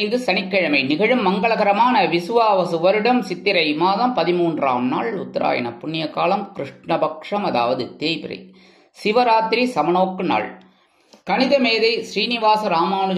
சனிக்கிழமை நிகழும் மங்களகரமான விசுவாவசு வருடம் சித்திரை மாதம் 13ஆம் நாள், உத்தராயண புண்ணிய காலம், கிருஷ்ணபக்ஷம், அதாவது தேய்பிறை, சிவராத்திரி சமநோக்கு நாள். கணித மேதை ஸ்ரீனிவாச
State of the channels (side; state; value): both; identical; correlation 1.00